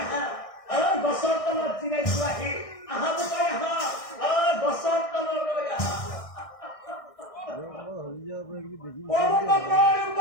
আহা, গছৰ তলত জিৰাইছো আহি আহা বোকাই আহা, গছৰ তললৈ আহা।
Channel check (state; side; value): late; right; 1.6 ms